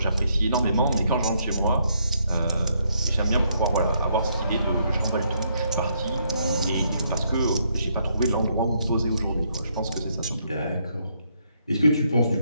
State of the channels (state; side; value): inverted; both; correlation -0.73